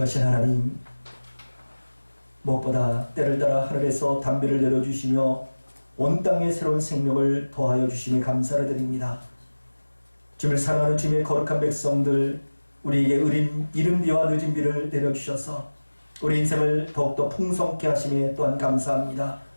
하나님, 무엇보다 때를 따라 하늘에서 담비를 내려주시며 온 땅에 새로운 생명을 더하여 주심에 감사를 드립니다. 주님을 사랑하는 주님의 거룩한 백성들, 우리에게 의린 이른 비와 늦은 비를 내려주셔서 우리 인생을 더욱더 풍성케 하심에 또한 감사합니다.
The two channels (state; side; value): inverted; both; correlation -1.00